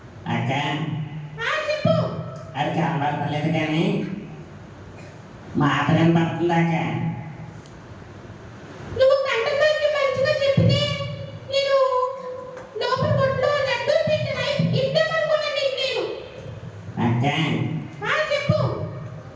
అక్క చెప్పు. అది కనబడతలేదు కానీ మాట కనబడుతుందాక. నువ్వు కంటతోటి మంచిగా చెప్తే నేను లోపల కొట్లో లడ్డు పెట్టిన ఇద్దామనుకున్నా నీకు నేను. అక్క చెప్పు.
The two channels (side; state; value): both; identical; correlation 1.00